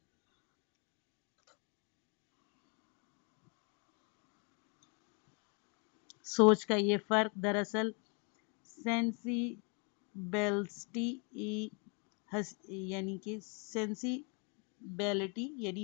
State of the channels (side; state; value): right; quieter; 35.8 dB